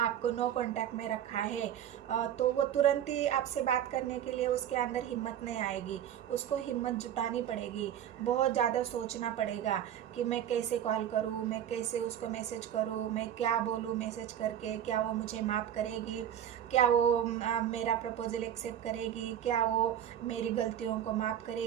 नो कांटेक्ट में रखा है, तो वो तुरंत ही आपसे बात करने के लिए उसके अंदर हिम्मत नहीं आएगी। उसको हिम्मत जुटानी पड़ेगी, बहुत ज़्यादा सोचना पड़ेगा कि मैं कैसे कॉल करूँ, मैं कैसे उसको मैसेज करूँ, मैं क्या बोलूँ मैसेज करके, क्या वो मुझे माफ़ करेगी, क्या वो मेरा प्रपोजल एक्सेप्ट करेगी, क्या वो मेरी गलतियों को माफ़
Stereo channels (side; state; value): left; quieter; 10.4 dB